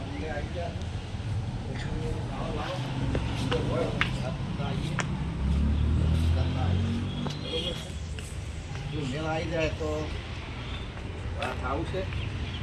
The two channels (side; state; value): both; identical; correlation 1.00